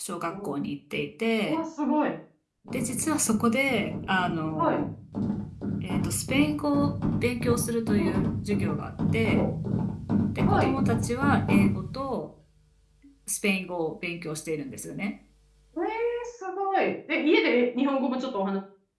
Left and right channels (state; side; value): identical; both; correlation 1.00